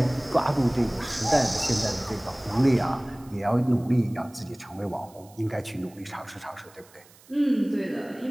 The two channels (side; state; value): right; noise; hiss, 26 dB below the sound